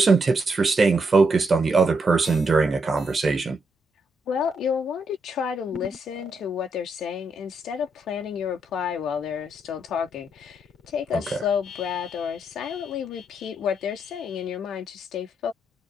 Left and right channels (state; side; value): normal; both; correlation 0.78